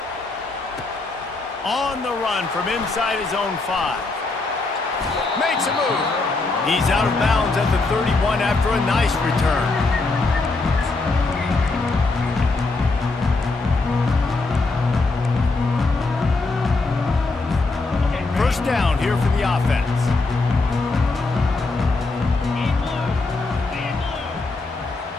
On the run from inside his own 5. Makes a move. He's out of bounds at the 31 after a nice return. First down here for the offense.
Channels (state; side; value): quieter; right; 3.5 dB